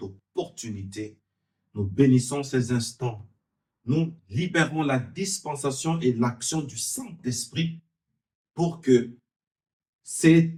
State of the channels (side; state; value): both; identical; correlation 1.00